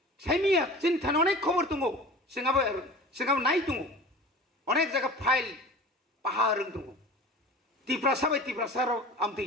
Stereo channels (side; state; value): both; normal; correlation 0.38